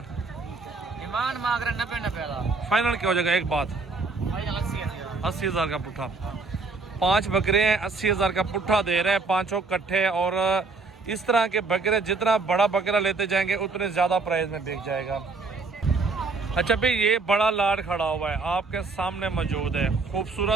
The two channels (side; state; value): left; quieter; 4.0 dB